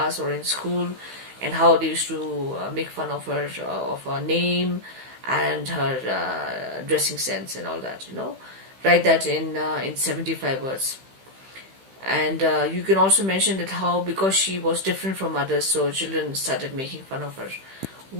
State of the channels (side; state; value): left; late; 15 ms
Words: or in school, and how they used to make fun of her name and her dressing sense and all that. Write that in 75 words. And you can also mention that how, because she was different from others, so children started making fun of her.